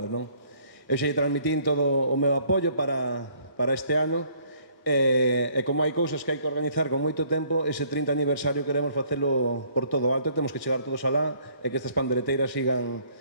non? Eu xa transmitín todo o meu apoio para este ano, e como hai cousas que hai que organizar con moito tempo, ese 30 aniversario queremos facelo por todo alto e temos que chegar todos alá e que estas pandereteiras sigan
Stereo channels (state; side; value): late; right; 1.6 ms